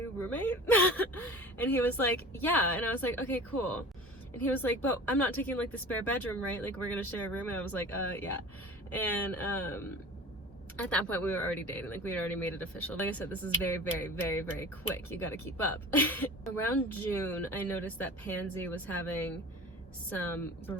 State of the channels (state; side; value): normal; both; correlation 0.39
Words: roommate? And he was like, yeah. And I was like, okay, cool. And he was like, but I'm not taking like the spare bedroom, right? Like we're gonna share a room. And I was like, yeah. And at that point we were already dating, like we had already made it official. Like I said, this is very, very, very, very quick. You gotta keep up. Around June, I noticed that Pansy was having some